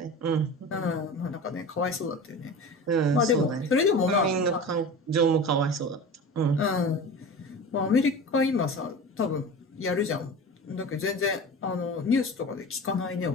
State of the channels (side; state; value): both; normal; correlation 0.33